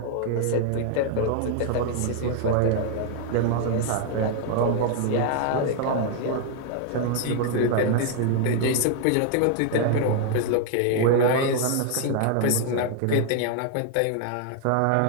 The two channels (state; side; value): different; both; correlation 0.00